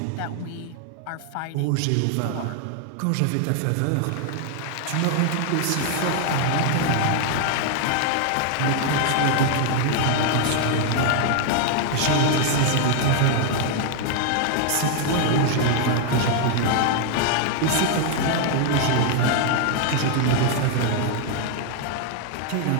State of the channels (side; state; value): both; different; correlation 0.00